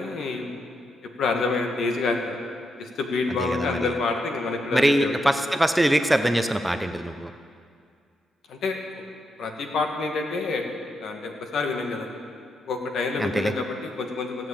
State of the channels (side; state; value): both; normal; correlation 0.82